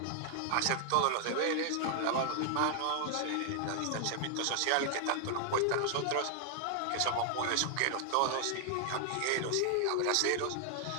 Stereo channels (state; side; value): different; both; correlation 0.00